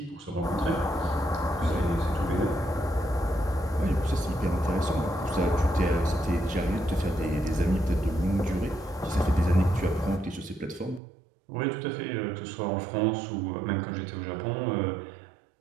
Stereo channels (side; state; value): left; drops out; at 11.0 s